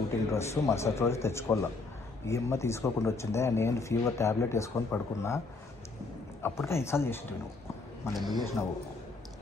డ్రెస్ మరుసటి రోజు తెచ్చుకోవాలా. ఈ అమ్మ తీసుకోకుండా వచ్చిందే. నేను ఫీవర్ ట్యాబ్లెట్ వేసుకొని పడుకున్నా. అప్పటికే 5 సార్లు చేసింది నువ్వు. మళ్ళీ ఎందుకు చేసినావు?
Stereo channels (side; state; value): right; quieter; 3.6 dB